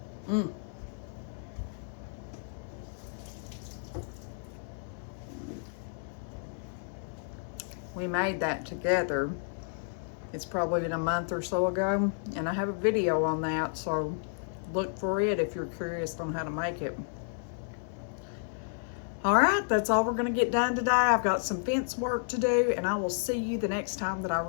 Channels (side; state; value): right; silent; digital silence